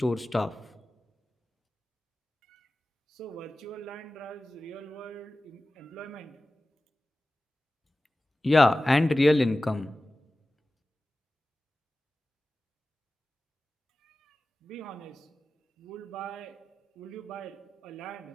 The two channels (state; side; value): normal; both; correlation 0.96